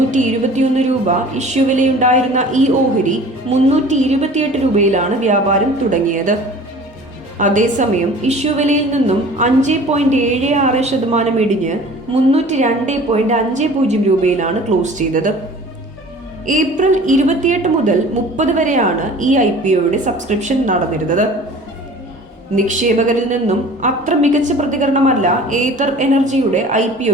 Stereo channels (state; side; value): normal; both; correlation 0.45